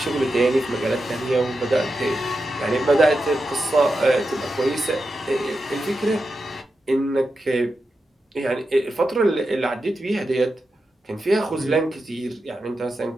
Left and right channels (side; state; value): both; normal; correlation 0.89